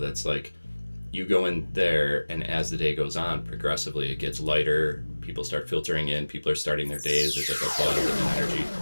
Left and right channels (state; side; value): inverted; both; correlation -1.00